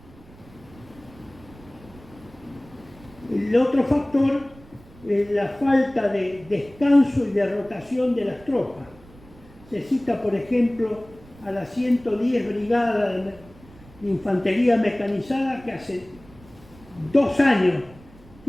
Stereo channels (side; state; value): right; noise; rumble, 23 dB below the sound